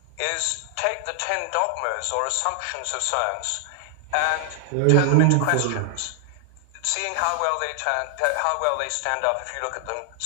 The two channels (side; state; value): both; different; correlation 0.00